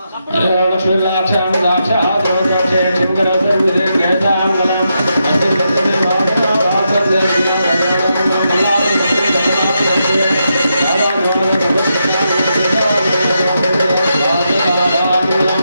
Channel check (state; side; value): inverted; both; correlation -0.84